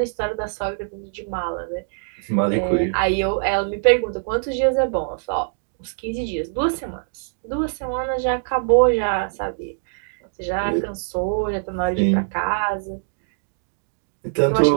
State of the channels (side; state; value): left; silent; digital silence